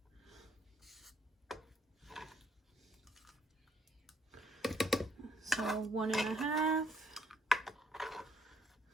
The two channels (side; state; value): both; normal; correlation 0.68